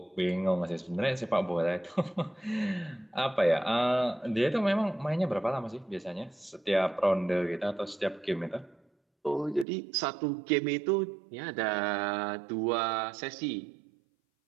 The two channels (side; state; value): left; drops out; at 9.7 s